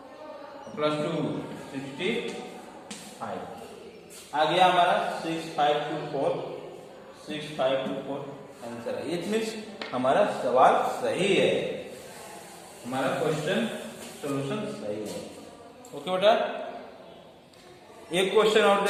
प्लस 2 65 आ गया हमारा 6524, 6524 आंसर है। इट मीन्स हमारा सवाल सही है, हमारा क्वेश्चन सॉल्यूशन सही है। ओके बेटा, एक क्वेश्चन और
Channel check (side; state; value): both; identical; correlation 1.00